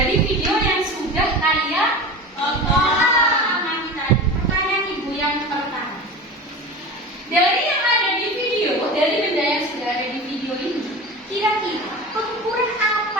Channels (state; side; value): normal; both; correlation 0.31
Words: video yang sudah kalian amati tadi. Pertanyaan Ibu yang pertama. Dari yang ada di video, dari benda yang sudah ada di video ini, kira-kira pengukuran